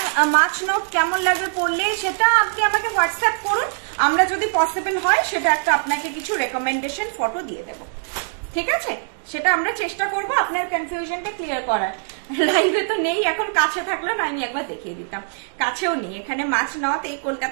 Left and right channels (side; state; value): left; silent; digital silence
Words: মাছ নথ কেমন লাগবে পড়লে সেটা আপনি আমাকে হোয়াটসঅ্যাপ করুন, আমরা যদি পসিবল হয় সেটা একটা আপনাকে কিছু রেকমেন্ডেশন ফটো দিয়ে দেব, ঠিক আছে? সেটা আমরা চেষ্টা করব আপনার কনফিউশনটা ক্লিয়ার করার। লাইভে তো নেই এখন, কাছে থাকলো না আমি একবার দেখিয়ে দিতাম, কাছেও নেই, এখানে মাছ নথ এই